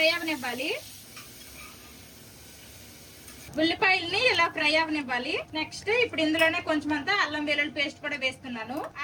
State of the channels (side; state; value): both; identical; correlation 1.00